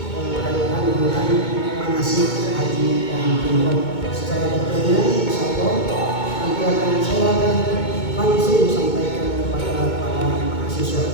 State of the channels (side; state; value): right; late; 2.2 ms